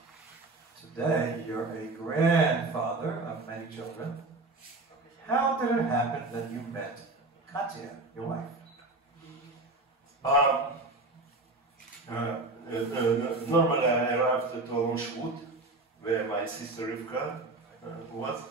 Today, you're a grandfather of many children. How did it happen that you met Katya, your wife? Normally, I arrived at Olmshut, where my sister Rivka was.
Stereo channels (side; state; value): left; quieter; 3.1 dB